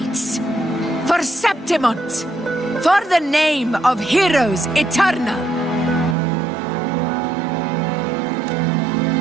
For Septimont! For the name of heroes eternal!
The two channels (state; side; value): drops out; left; at 6.2 s